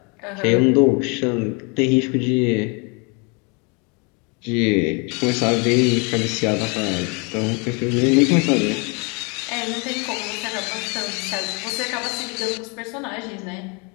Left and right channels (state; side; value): quieter; right; 32.1 dB